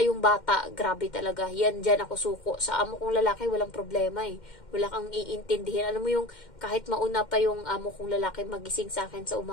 yung bata, grabe talaga. Yan, dyan ako suko. Sa amo kong lalaki, walang problema eh. Wala kang iintindihin. Alam mo yung, kahit mauna pa yung amo kong lalaki magising sa akin sa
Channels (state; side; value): late; right; 2.1 ms